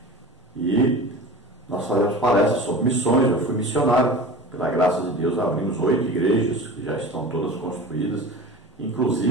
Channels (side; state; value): both; normal; correlation 0.35